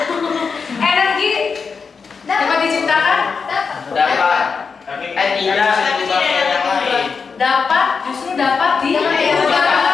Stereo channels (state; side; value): quieter; right; 5.4 dB